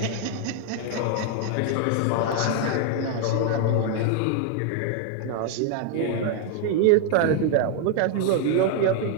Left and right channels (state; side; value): different; both; correlation 0.00